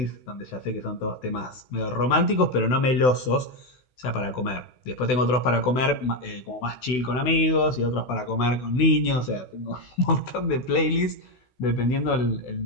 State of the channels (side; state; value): right; late; 16 ms